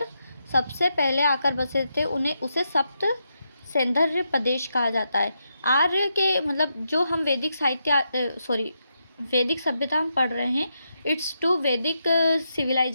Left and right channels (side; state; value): both; inverted; correlation -0.83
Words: सबसे पहले आकर बसे थे उसे सप्त सैंधर्य प्रदेश कहा जाता है। आर्य के मतलब जो हम वैदिक सभ्यता हम पढ़ रहे हैं, इट्स टू वैदिक